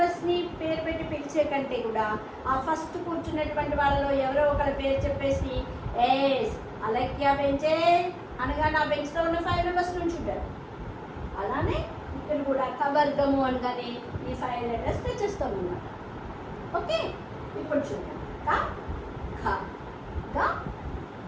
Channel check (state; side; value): identical; both; correlation 1.00